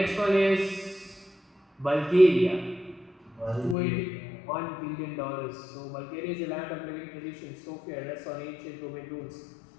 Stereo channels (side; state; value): right; drops out; at 3.8 s